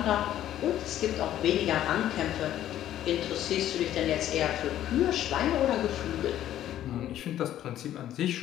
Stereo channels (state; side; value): quieter; right; 12.1 dB